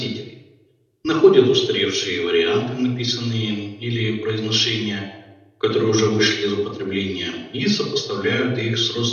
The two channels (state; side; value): identical; both; correlation 1.00